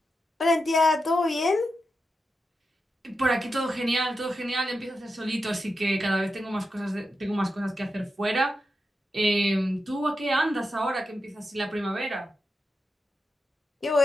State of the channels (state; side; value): normal; both; correlation 0.88